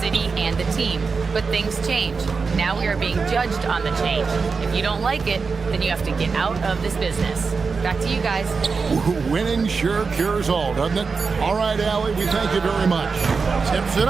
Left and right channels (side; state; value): left; quieter; 4.9 dB